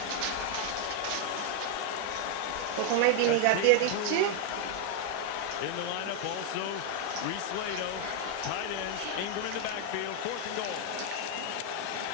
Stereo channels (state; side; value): different; both; correlation 0.00